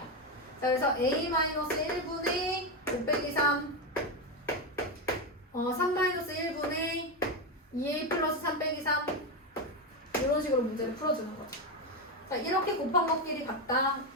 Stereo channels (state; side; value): normal; both; correlation 0.11